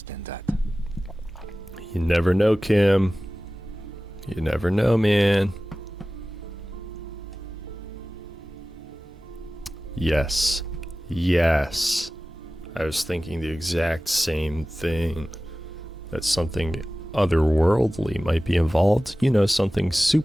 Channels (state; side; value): normal; both; correlation 0.96